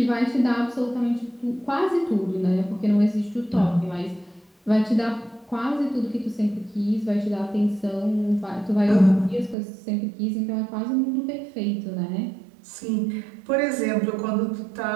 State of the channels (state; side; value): drops out; left; at 9.6 s